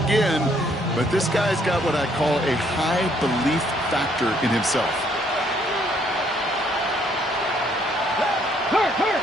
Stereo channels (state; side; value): normal; both; correlation 0.67